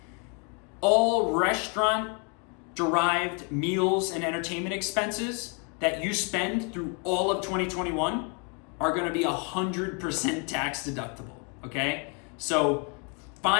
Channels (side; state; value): right; quieter; 36.1 dB